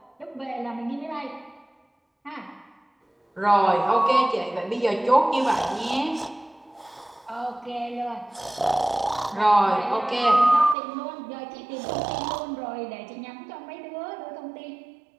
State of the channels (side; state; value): left; drops out; at 10.8 s